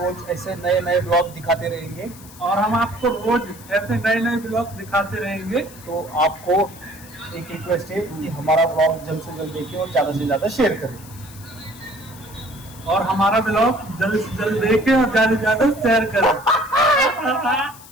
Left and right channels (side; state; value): left; noise; hiss, 20 dB below the sound